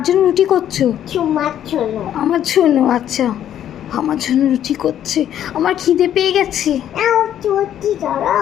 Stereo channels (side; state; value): right; quieter; 10.7 dB